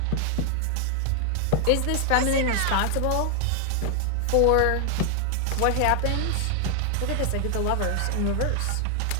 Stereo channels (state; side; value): different; both; correlation 0.00